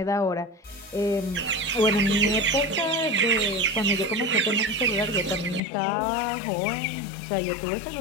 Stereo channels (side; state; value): right; drops out; at 5.6 s